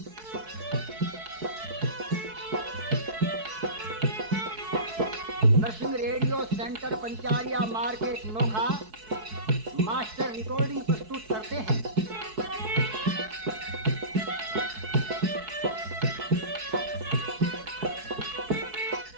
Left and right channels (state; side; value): late; left; 4.6 ms